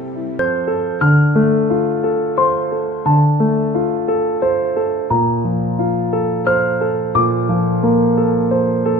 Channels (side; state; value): both; normal; correlation 0.54